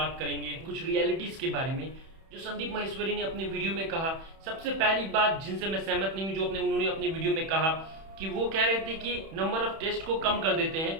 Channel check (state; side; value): late; left; 31 ms